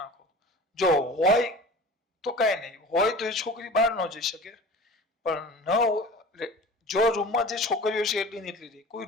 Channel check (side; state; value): both; normal; correlation 0.39